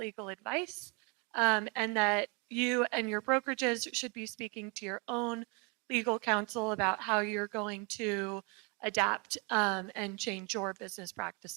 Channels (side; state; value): left; quieter; 31.8 dB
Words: advice, and that you and your brokerages should be speaking to your own legal counsel about how you're going to adapt and change your business